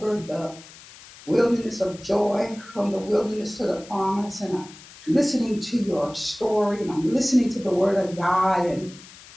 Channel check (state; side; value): noise; left; hiss, 20 dB below the sound